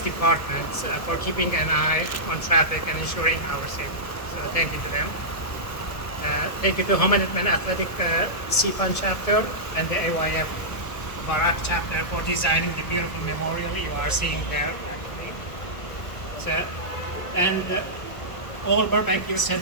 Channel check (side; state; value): right; late; 1.3 ms